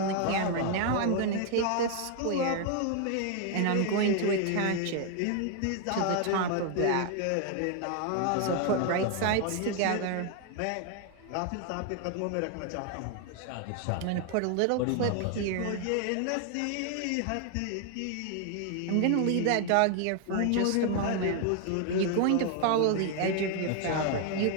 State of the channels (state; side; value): different; both; correlation 0.00